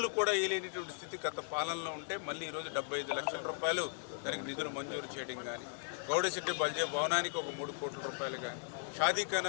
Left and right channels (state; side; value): silent; right; 53 dB below the other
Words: కూడా వేయలేనటువంటి స్థితి గత పాలనలో ఉంటే మళ్ళీ ఈరోజు 75 లక్షల రూపాయలు దానికి నిధులు మంజూరు చేయడం కానీ గౌడశెట్టి బల్జే భవనానికి ఒక 3 కోట్ల రూపాయలు కానీ